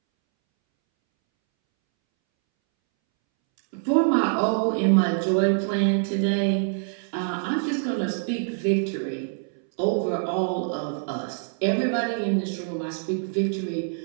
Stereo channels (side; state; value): left; silent; 62 dB below the other